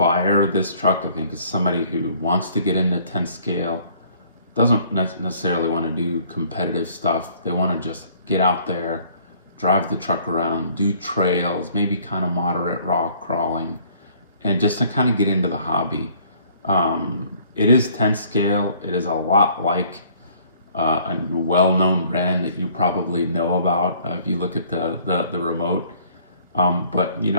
of this truck. I think is somebody who wants to get into 10 scale, doesn't necessarily want to do competitive stuff. They want to just get out there, drive the truck around, do trails, maybe kind of moderate rock crawling, and just to kind of get into the hobby. It is 10 scale. It is a lot like a well-known brand that you probably know about if you look at the remote. But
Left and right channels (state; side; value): inverted; both; correlation -0.58